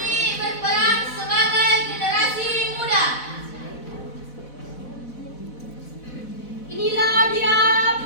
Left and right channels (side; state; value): right; late; 4.1 ms